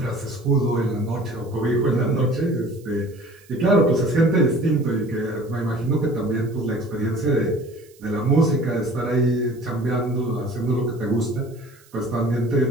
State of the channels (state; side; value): noise; right; hiss, 28 dB below the sound